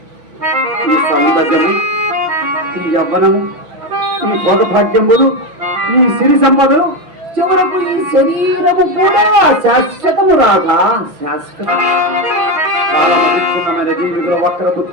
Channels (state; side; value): late; left; 6.0 ms